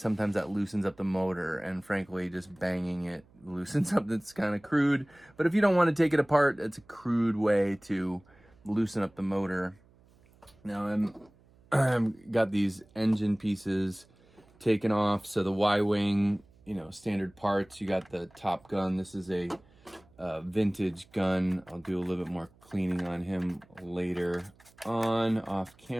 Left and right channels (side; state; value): right; noise; hum, 29 dB below the sound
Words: that loosens up the motor, and frankly just banging it loosens up. That's kind of crude, but if you don't want to take it apart, it's a crude way to loosen up the motor. Now I'm got these engine pieces taken off, so the Y-wing, you know, standard parts. You got the Top Gun. This is a vintage gun. I'll do a little bit more cleaning on him later on off